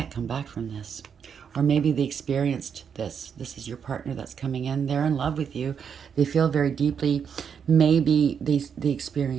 come back from this. Or maybe they experienced this. This is your partner that's coming in. They're in love with you. They feel very deeply. Maybe they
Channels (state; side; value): quieter; left; 7.2 dB